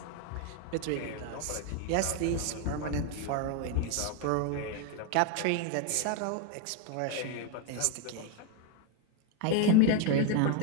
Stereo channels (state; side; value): different; both; correlation 0.01